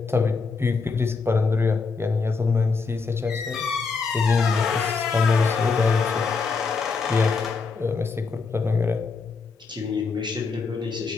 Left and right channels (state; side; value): quieter; right; 4.7 dB